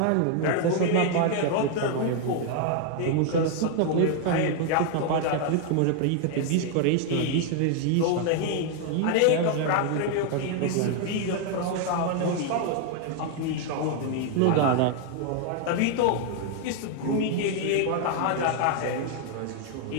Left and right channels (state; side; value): different; both; correlation 0.00